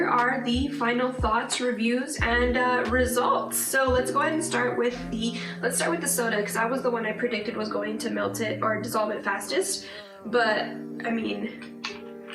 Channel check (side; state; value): both; identical; correlation 1.00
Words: are the final thoughts, reviews, and results. So let's go ahead and start with the soda, because that was the one I predicted was going to melt it or dissolve it fastest. But I mean,